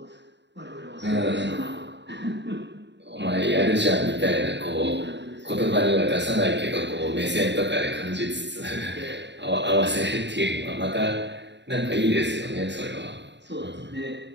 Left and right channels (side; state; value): left; late; 0.51 ms